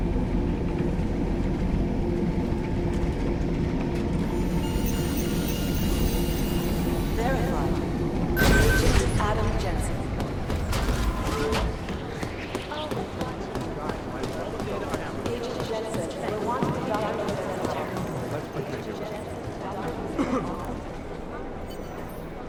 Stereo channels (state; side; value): identical; both; correlation 1.00